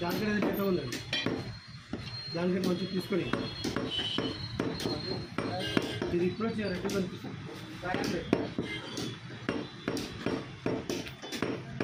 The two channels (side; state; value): both; identical; correlation 1.00